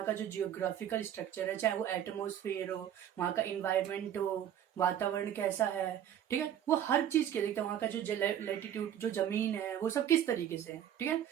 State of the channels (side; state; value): left; quieter; 10.3 dB